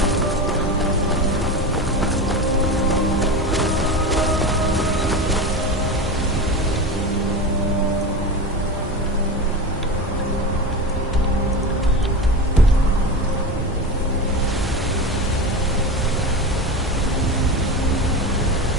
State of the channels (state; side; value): normal; both; correlation 0.24